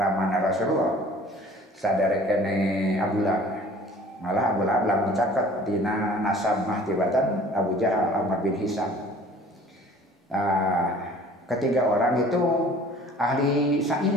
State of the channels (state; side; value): normal; both; correlation 0.49